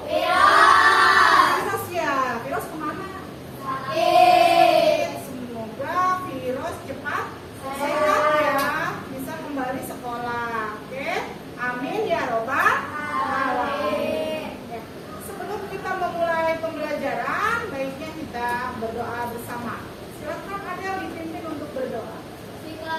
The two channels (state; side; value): identical; both; correlation 1.00